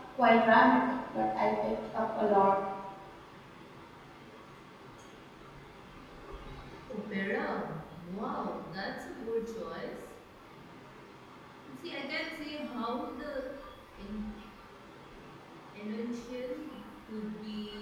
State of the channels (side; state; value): both; identical; correlation 1.00